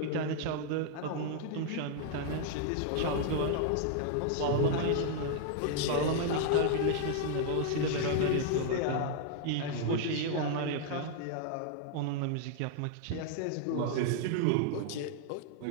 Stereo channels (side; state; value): both; different; correlation 0.00